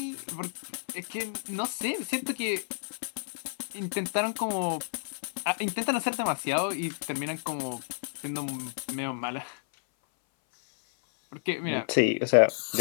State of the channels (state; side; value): silent; right; 58 dB below the other